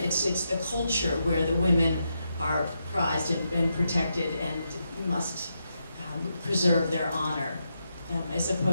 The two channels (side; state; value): both; inverted; correlation -0.84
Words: the culture where the women are prized and protected and must preserve their honor, as